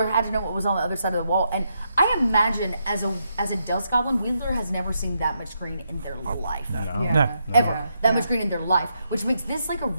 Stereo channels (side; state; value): both; inverted; correlation -0.81